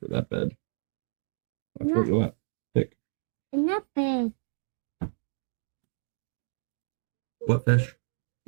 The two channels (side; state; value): left; silent; digital silence